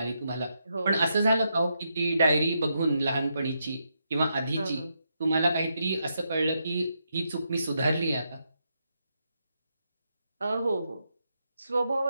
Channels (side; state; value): both; inverted; correlation -0.82